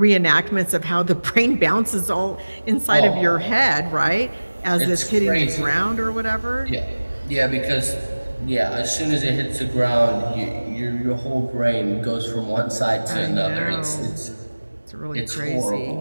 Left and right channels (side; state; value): both; inverted; correlation -1.00